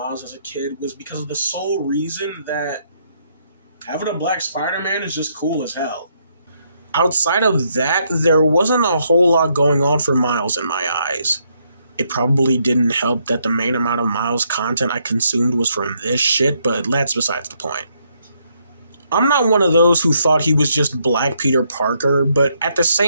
as a kid was because of the sole reason that having a black Spider-Man is just cool as hell. Outside of that, there wasn't a whole lot going on for Miles in my eyes. It probably didn't help that the main amount of Miles content I consumed was from this shit, but that's besides the point. I'm not one of those who thought he was just Black Peter Parker, but at the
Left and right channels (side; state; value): both; inverted; correlation -0.74